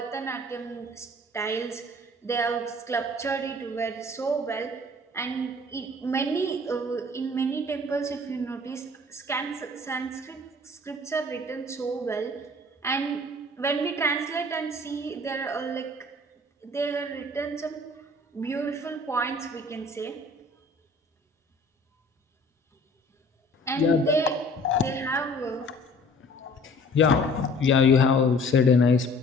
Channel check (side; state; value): both; normal; correlation 0.51